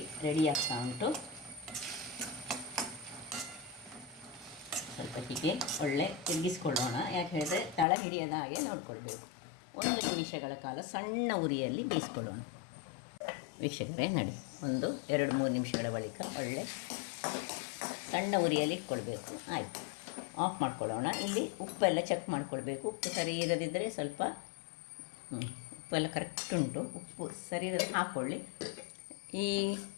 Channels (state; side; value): drops out; right; at 7.9 s